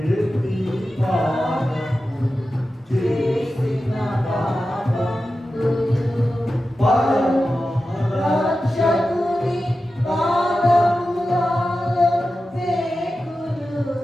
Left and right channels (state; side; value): normal; both; correlation 0.93